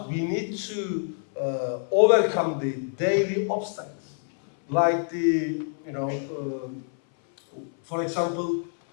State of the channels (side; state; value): right; silent; 61 dB below the other